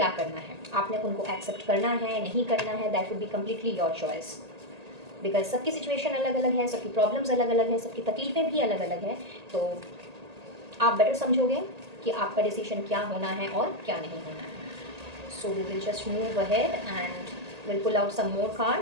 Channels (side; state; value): left; late; 1.8 ms